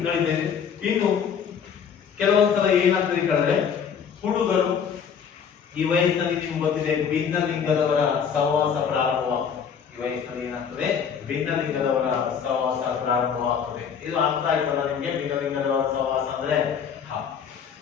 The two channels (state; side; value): quieter; right; 7.2 dB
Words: ನಡೀತಾ ಇದೆ. ಇನ್ನು ಕೆಲವೊಂದ್ಸಲ ಏನಾಗ್ತದೆ ಕೇಳಿದ್ರೆ, ಹುಡುಗರು ಈ ವಯಸ್ಸಿನಲ್ಲಿ ನಿಮ್ಗೆ ಗೊತ್ತಿದೆ ಭಿನ್ನ ಲಿಂಗದವರ ಸಹವಾಸ ಪ್ರಾರಂಭವಾಗ್ತದೆ. ಈ ವಯಸ್ಸಿನಲ್ಲಿ ಏನಾಗ್ತದೆ? ಭಿನ್ನ ಲಿಂಗದವರ ಸಹವಾಸ ಪ್ರಾರಂಭವಾಗ್ತದೆ. ಇದು ಅರ್ಥ ಆಯ್ತಲ್ಲ ನಿಮ್ಗೆ? ಭಿನ್ನ ಲಿಂಗದವರ ಸಹವಾಸ ಅಂದ್ರೆ